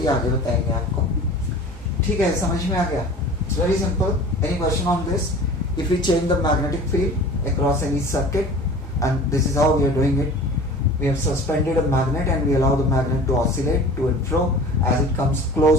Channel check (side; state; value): both; normal; correlation 0.41